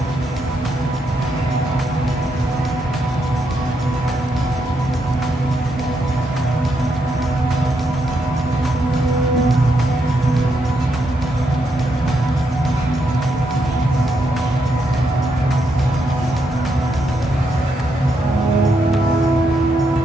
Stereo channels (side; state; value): both; normal; correlation 0.79